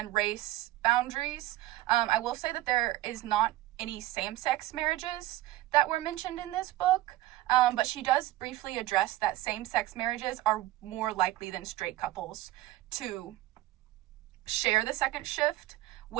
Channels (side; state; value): left; quieter; 16.3 dB